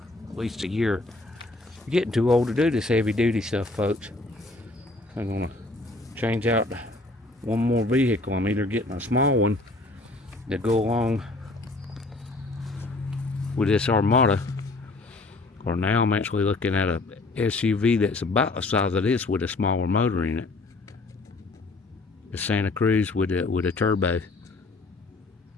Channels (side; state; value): right; quieter; 3.0 dB